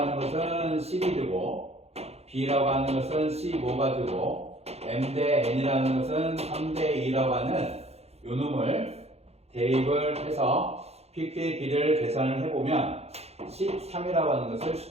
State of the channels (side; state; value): left; late; 0.30 ms